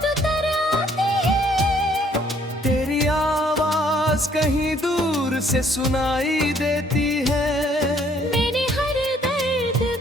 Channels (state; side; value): normal; both; correlation 0.63